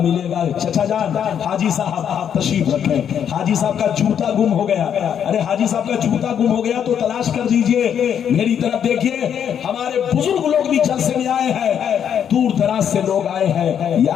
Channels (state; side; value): quieter; right; 8.6 dB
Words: ملے گا. چچا جان، حاجی صاحب آپ تشریف رکھیں. حاجی صاحب کا جوتا گم ہو گیا. ارے حاجی صاحب کا جوتا گم ہو گیا تو تلاش کر دیجئے. میری طرف دیکھیے، ہمارے بزرگ لوگ بھی جلسے میں آئے ہیں، دور دراز سے لوگ آئے ہیں، یہ